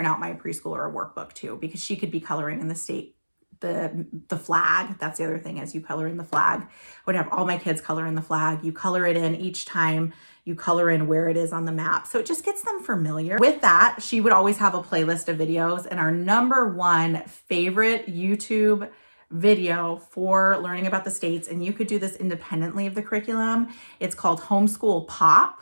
out my preschooler a workbook too, because she could be coloring in the state, the flag. That's the other thing, as you color in the flag. I would have all my kids color in the flag. You color it in each time. You color in where it is on the map. So it just gets them familiar. With that, she would always have a playlist of videos, and our number one favorite YouTube video for learning about the states, and you could do this independently of the curriculum. It's called Homeschool Pop,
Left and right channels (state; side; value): inverted; both; correlation -1.00